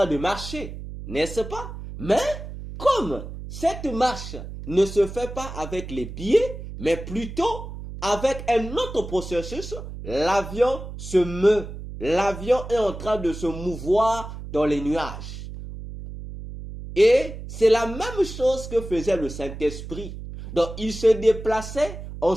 de marcher, n'est-ce pas? Mais comme cette marche ne se fait pas avec les pieds, mais plutôt avec un autre processus, l'avion se meut. L'avion est en train de se mouvoir dans les nuages. Et c'est la même chose que faisait le Saint-Esprit. Donc, il se déplaçait en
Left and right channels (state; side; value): noise; right; hum, 10 dB below the sound